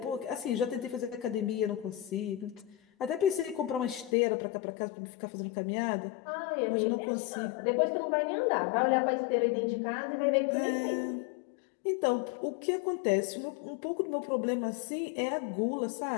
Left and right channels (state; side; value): drops out; right; at 4.2 s